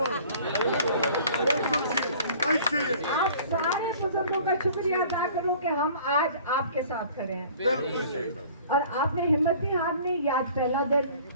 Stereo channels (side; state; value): both; inverted; correlation -0.49